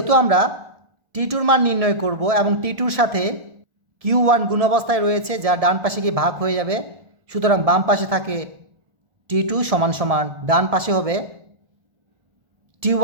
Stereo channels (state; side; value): late; left; 1.7 ms